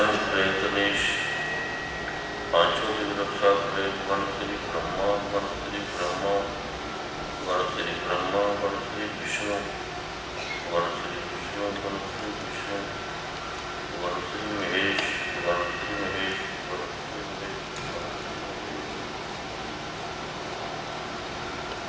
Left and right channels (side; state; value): both; identical; correlation 1.00